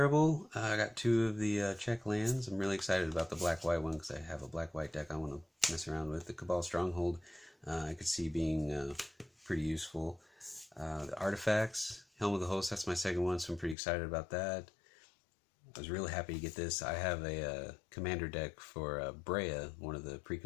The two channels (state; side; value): drops out; right; at 13.8 s